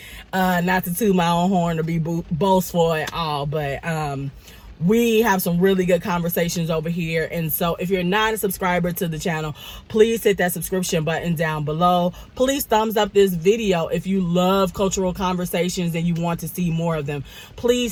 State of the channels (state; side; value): identical; both; correlation 1.00